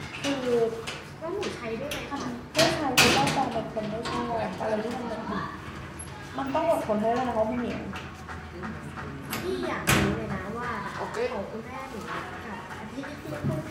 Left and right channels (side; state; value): both; identical; correlation 1.00